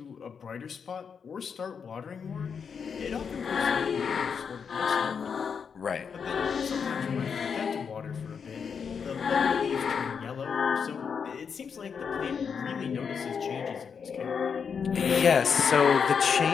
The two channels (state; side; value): quieter; right; 6.4 dB